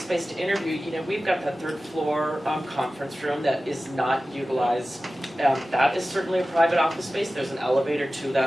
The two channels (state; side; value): normal; both; correlation 0.95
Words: to interview, you know, we've got that 3rd floor conference room that is not utilized. That is certainly a private office space. There's an elevator to